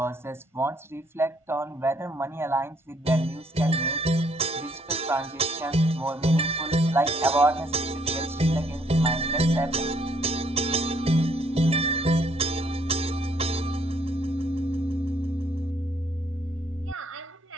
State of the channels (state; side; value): normal; both; correlation 0.67